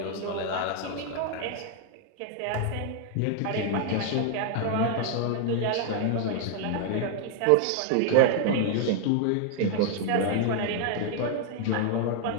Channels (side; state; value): both; different; correlation 0.00